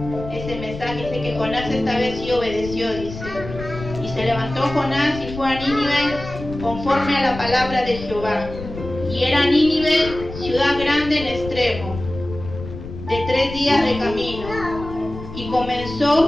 Ese mensaje dice que Jonás esta vez sí obedeció, dice. Y se levantó Jonás y fue a Nínive conforme a la palabra de Jehová. Y era Nínive ciudad grande en extremo, de 3 días de camino. Y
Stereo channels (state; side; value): noise; left; rumble, 11 dB below the sound